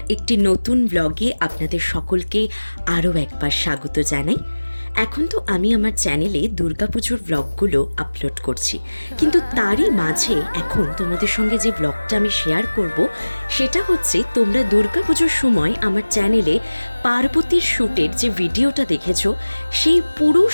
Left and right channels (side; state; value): both; inverted; correlation -1.00